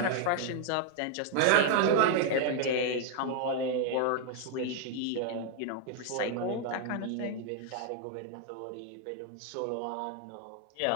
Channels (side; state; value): both; different; correlation 0.00